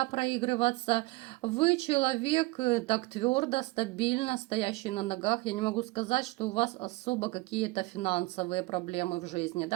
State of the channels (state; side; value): quieter; left; 22.1 dB